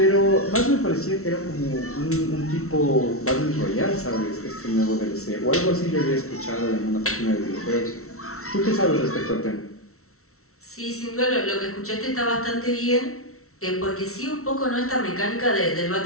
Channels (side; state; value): right; late; 0.63 ms